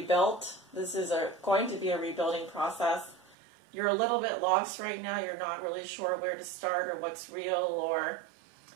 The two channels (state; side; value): drops out; left; at 3.4 s